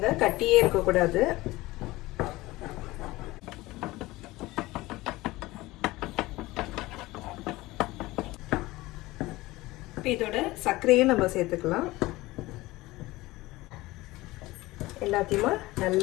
கட்டியே இருக்கக்கூடாது. இதோட சர்க்கரையும் நம்ம சேர்த்துக்கலாம். எல்லாத்தையுமே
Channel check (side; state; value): right; quieter; 19.4 dB